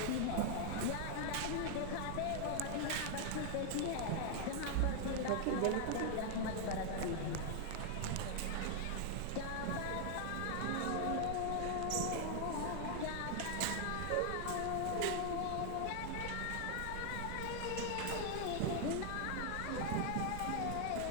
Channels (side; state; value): both; different; correlation 0.00